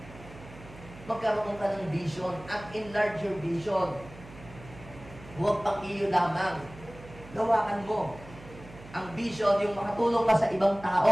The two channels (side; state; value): right; noise; hum, 18 dB below the sound